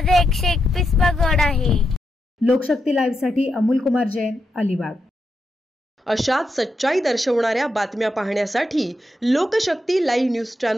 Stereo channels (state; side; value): normal; both; correlation 0.85